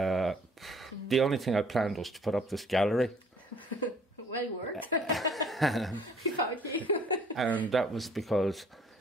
only thing I planned was to put up this gallery. Well worked. And that was because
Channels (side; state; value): both; normal; correlation 0.57